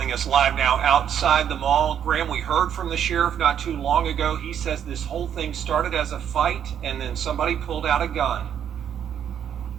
us live now outside the mall. Graham, we heard from the sheriff not too long ago. He says this whole thing started as a fight and then somebody pulled out a gun.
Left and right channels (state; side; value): quieter; left; 9.0 dB